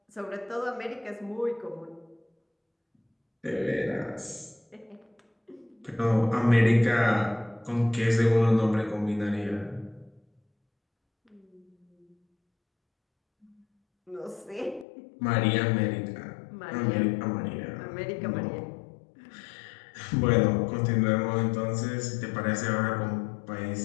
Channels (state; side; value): drops out; right; at 14.9 s